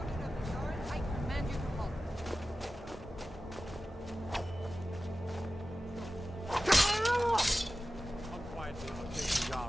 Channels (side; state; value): both; normal; correlation 0.95